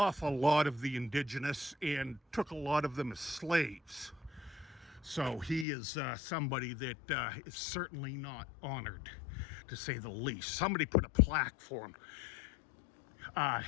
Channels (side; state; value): right; drops out; at 5.7 s